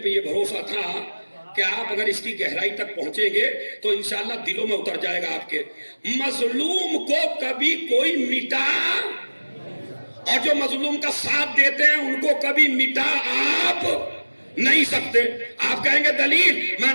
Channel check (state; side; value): inverted; both; correlation -1.00